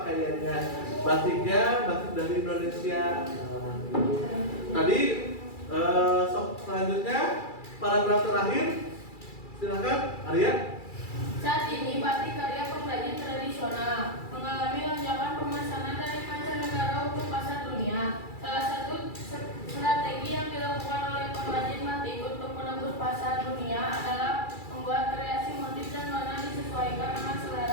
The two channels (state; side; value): late; right; 2.3 ms